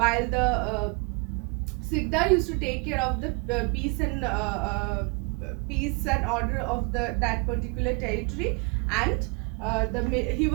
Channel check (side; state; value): left; quieter; 32.0 dB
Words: the Sikdar used to take care of the peace and order of that particular territory, and he